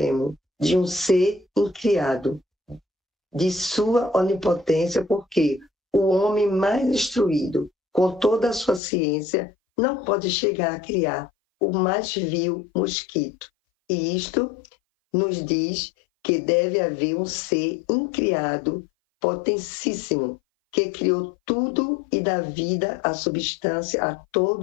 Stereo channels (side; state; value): right; drops out; at 8.8 s